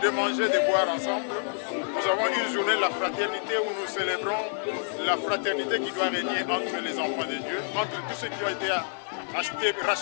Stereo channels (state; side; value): silent; right; digital silence